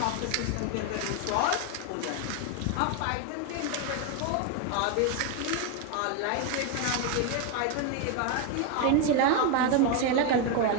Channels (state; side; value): different; both; correlation 0.01